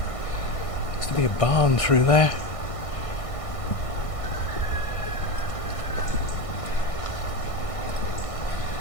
looks to be a barn through there.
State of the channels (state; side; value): late; right; 1.6 ms